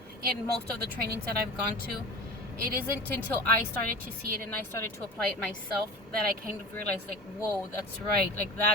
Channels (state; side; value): normal; both; correlation 0.34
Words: in most of the trainings that I've gone to. It isn't until I started to see it and I started to apply it myself that I kind of realized, like, whoa, that's right. Like,